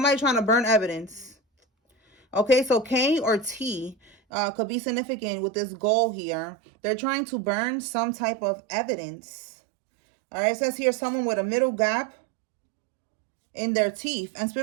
trying to burn evidence. Okay, so K or T could be significant with this goal here. They're trying to burn some type of evidence. All right, it says here someone with a middle gap in their teeth. And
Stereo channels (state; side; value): drops out; left; at 4.2 s